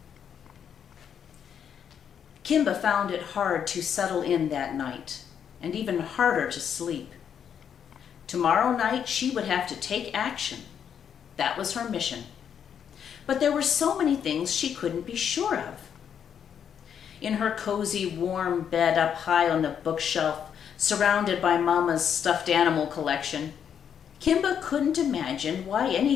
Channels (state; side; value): quieter; right; 8.2 dB